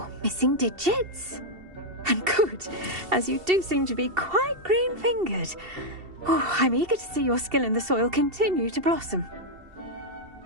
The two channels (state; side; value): late; left; 2.7 ms